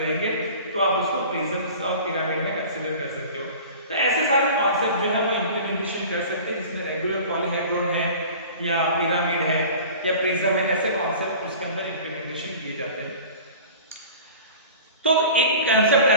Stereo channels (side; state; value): both; inverted; correlation -0.40